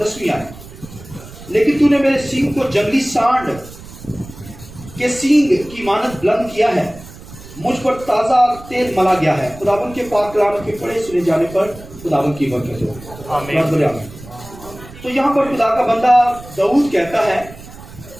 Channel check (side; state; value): right; noise; rumble, 17 dB below the sound